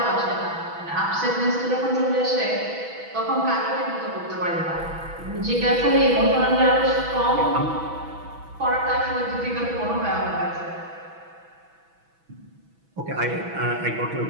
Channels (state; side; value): late; left; 6.1 ms